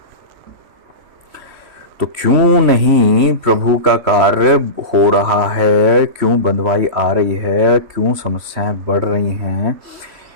तो क्यों नहीं प्रभु का कार्य हो रहा है? क्यों बंधुआई आ रही है? क्यों समस्याएं बढ़ रही हैं?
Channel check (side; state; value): left; late; 3.1 ms